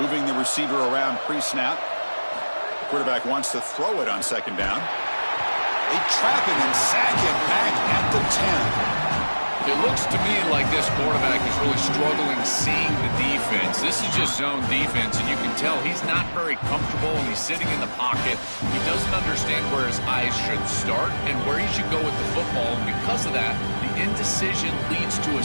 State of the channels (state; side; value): inverted; both; correlation -1.00